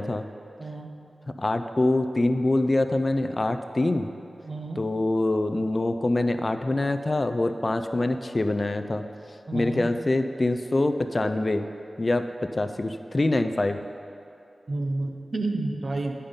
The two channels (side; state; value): both; normal; correlation 0.98